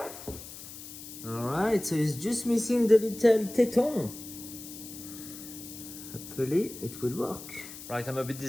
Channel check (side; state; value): left; noise; hiss, 13 dB below the sound